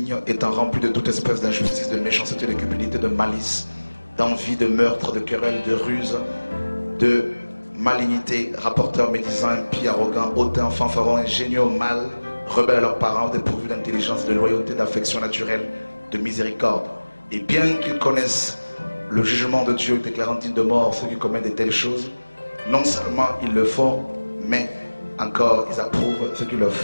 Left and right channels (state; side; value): inverted; both; correlation -1.00